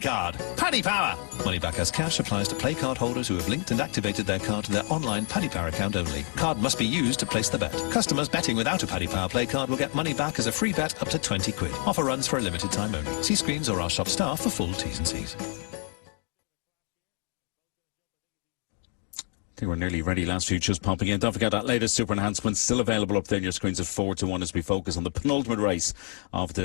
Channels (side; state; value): right; quieter; 39.6 dB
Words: Paddy Power. Money back as cash applies to play card holders who have linked and activated their card to their online Paddy Power account only. Card must be used to place the bet. Customers betting without a Paddy Power play card will get money back as a free bet up to 20 quid. Offer runs for a limited time only. See screens or our shop staff for full T's and C's. I think we're nearly ready. Last few just popping in. Don't forget that latest super enhancement still available up there on your screens at 4-1 as we focus on the penultimate race of the